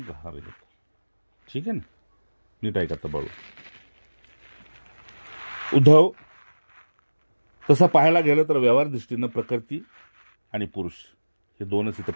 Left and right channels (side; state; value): both; inverted; correlation -1.00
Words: गहार. ठीक आहे ना, नीट ऐका तर बळू. उद्धव, तसं पाहायला गेलं तर व्यवहार दृष्टीनं प्रकृती आणि पुरुष हे 2च इथं